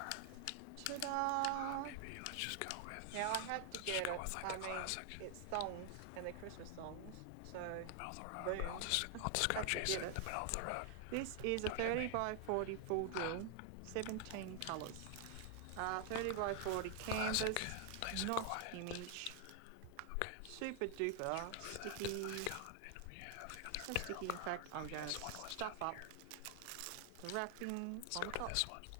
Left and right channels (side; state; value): both; different; correlation 0.00